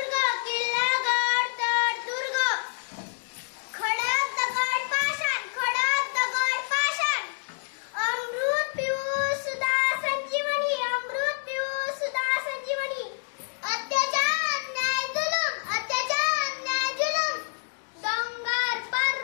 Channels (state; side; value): silent; right; digital silence